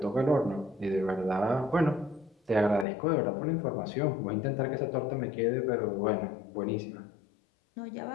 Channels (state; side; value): drops out; right; at 2.9 s